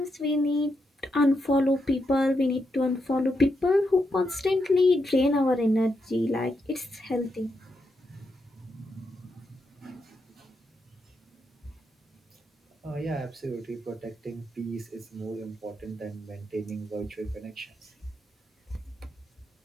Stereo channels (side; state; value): both; normal; correlation 0.83